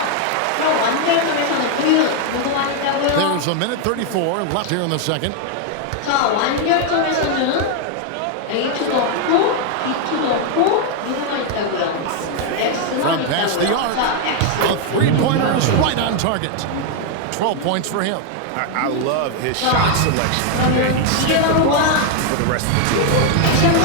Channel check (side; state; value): both; different; correlation 0.00